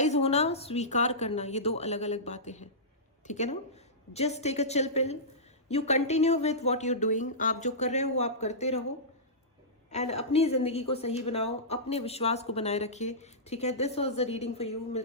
होना, स्वीकार करना, ये दो अलग अलग बातें हैं, ठीक है ना? Just take a chill pill, you continue with what you doing. आप जो कर रहे हो वो आप करते रहो, एंड अपनी जिंदगी को सही बनाओ, अपने विश्वास को बनाए रखिए, ठीक है? This was the reading for you.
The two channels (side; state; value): both; normal; correlation -0.17